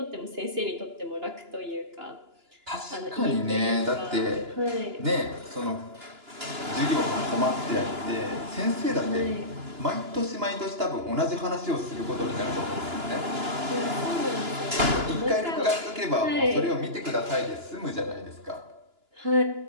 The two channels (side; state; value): left; late; 2.9 ms